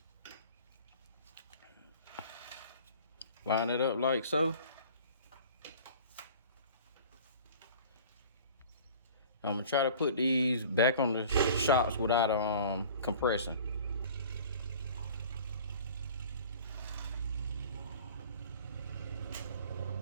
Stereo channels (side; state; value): both; inverted; correlation -0.45